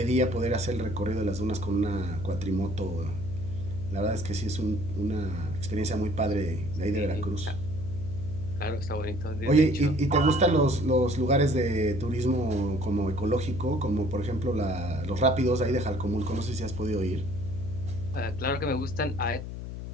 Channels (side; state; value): left; noise; hum, 7 dB below the sound